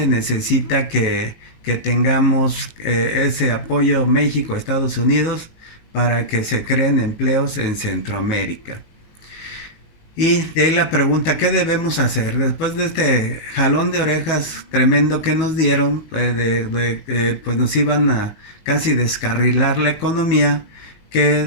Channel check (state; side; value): late; right; 19 ms